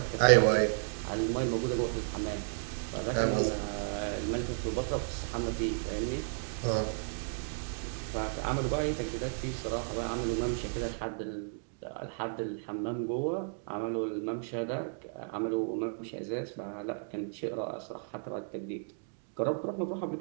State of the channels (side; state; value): left; silent; digital silence